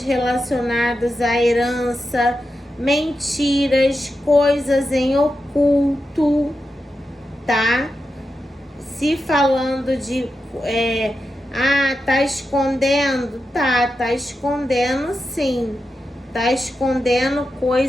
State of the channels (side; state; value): both; normal; correlation 0.89